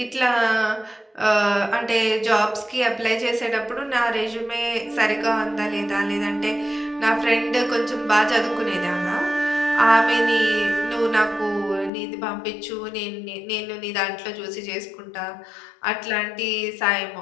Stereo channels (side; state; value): right; drops out; at 11.9 s